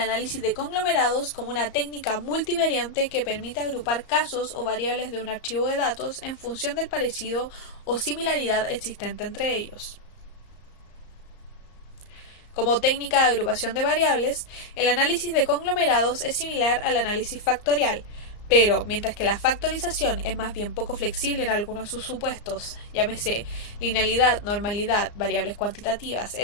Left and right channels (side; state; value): right; late; 34 ms